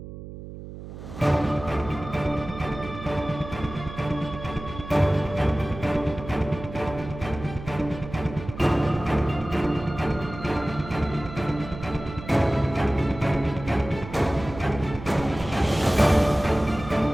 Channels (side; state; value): right; noise; hum, 12 dB below the sound